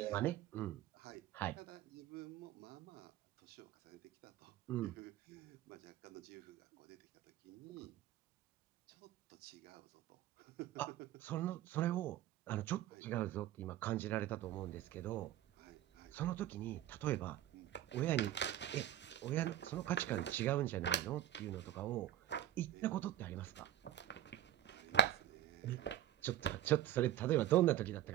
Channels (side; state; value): left; quieter; 12.0 dB